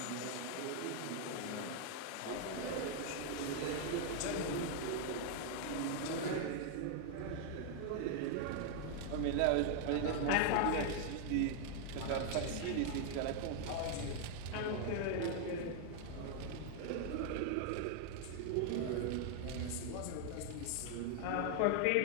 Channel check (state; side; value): different; both; correlation 0.00